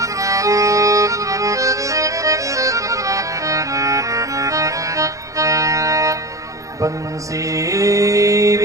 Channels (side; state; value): left; late; 0.16 ms